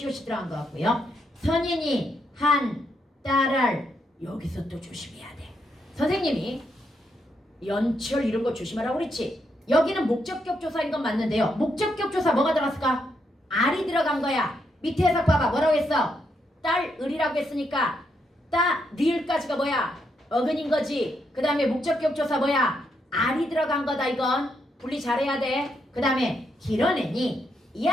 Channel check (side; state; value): both; normal; correlation 0.79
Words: 들어간 것 같고요. 선인이 한 딸을 여기서 또 조심해야 돼. 선생님이 연철 이런 거 조심하라고 그랬지. 여기는 목적격 조사인 건 맞는데요. 목적격 조사 뭐가 들어갔을까? 알이 들어간 거야. 밑에 해석 봐봐. 뭐라고 했어? 딸 을이라고 했으니까 따 리을까지가 뭐야? 어근인 거지. 그 다음에 목적격 조사 뭐야? 알이 들어간 거다. 이건 분리 잘해야 돼. 그 다음에 길어내니